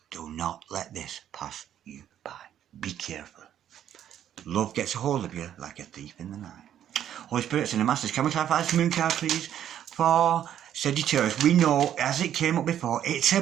Do not let this pass you by. Be careful. Love gets a hold of you like a thief in the night. Holy Spirits and the Masters, can we clarify this moon card, please? For Sagittarius, we know, as it came up before, it's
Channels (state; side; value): quieter; left; 10.4 dB